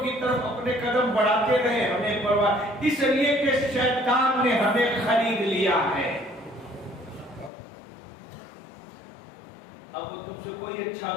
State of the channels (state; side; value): drops out; right; at 7.5 s